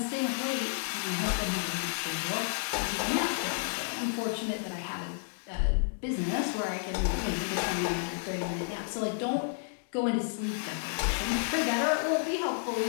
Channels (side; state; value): right; silent; digital silence